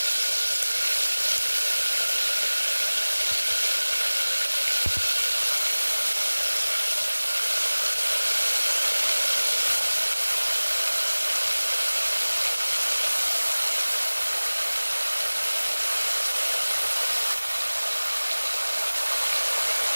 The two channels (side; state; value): both; inverted; correlation -1.00